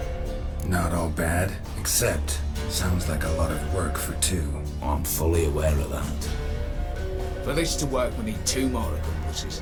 Not all bad, except sounds like a lot of work for two. I'm fully aware of that. For this to work, we need two more accomplices.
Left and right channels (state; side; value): identical; both; correlation 1.00